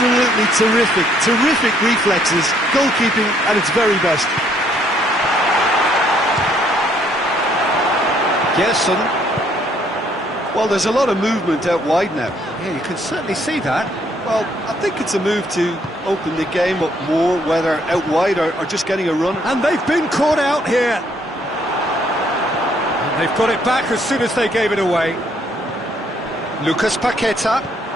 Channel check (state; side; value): normal; both; correlation 0.67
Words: terrific, terrific reflexes, goalkeeping at its very best. Gerson. Well, there's a lot of movement out wide now. Yeah, you can certainly see that. Well, I think it's a move to open the game up more, whether out wide or just getting a run. And they've been caught out here. And they've got it back as soon as they gave it away. Lucas Paqueta.